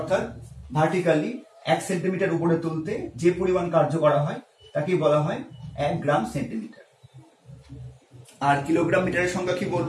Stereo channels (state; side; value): identical; both; correlation 1.00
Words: ভার্টিক্যালি 1 সেন্টিমিটার উপরে তুলতে যে পরিমাণ কার্য করা হয় তাকে বলা হয় 1 গ্রাম সেন্টিমিটার। আর কিলোগ্রাম মিটারের সংজ্ঞা কি